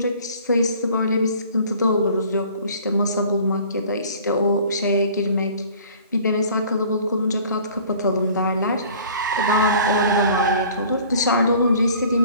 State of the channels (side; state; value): both; inverted; correlation -0.50